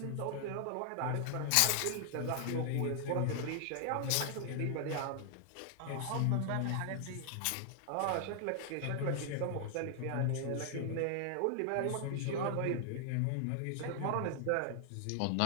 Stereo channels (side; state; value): both; different; correlation 0.00